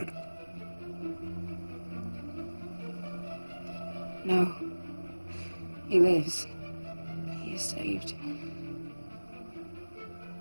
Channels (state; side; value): inverted; both; correlation -1.00